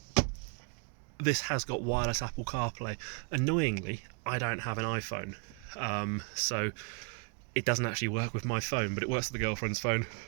this has got wireless Apple CarPlay. Annoyingly, I don't have an iPhone, so it doesn't actually work with my phone, but it works with the girlfriend's phone.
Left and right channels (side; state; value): left; quieter; 36.3 dB